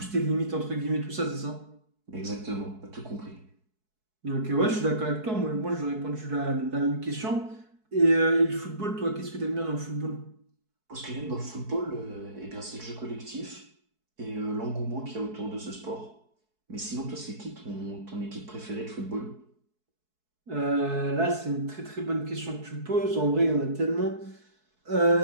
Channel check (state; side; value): late; left; 4.6 ms